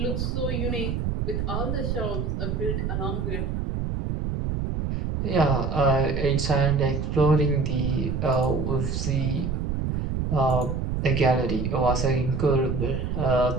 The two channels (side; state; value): right; noise; rumble, 1 dB below the sound